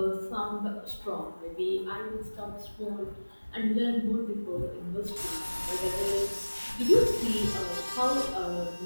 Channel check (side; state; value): both; inverted; correlation -1.00